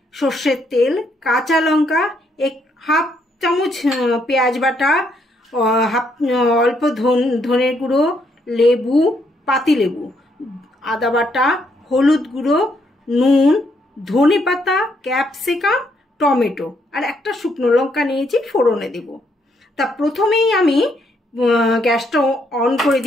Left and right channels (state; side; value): normal; both; correlation 0.73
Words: সর্ষের তেল, কাঁচা লঙ্কা, হাফ চামচ পেঁয়াজ বাটা, অল্প ধনের গুঁড়ো, লেবু, পাতিলেবু, আদা বাটা, হলুদ গুঁড়ো, নুন, ধনে পাতা, ক্যাপসিকাম, টমেটো আর একটা শুকনো লঙ্কা নিয়েছি, ফোড়নে দেব। তা প্রথমেই আমি গ্যাসটা অন করে